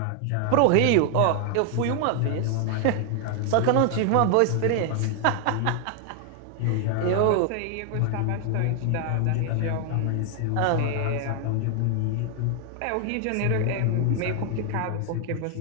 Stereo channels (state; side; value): different; both; correlation 0.00